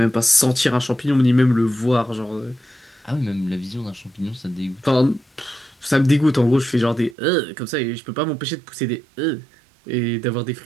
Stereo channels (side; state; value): left; drops out; at 7.2 s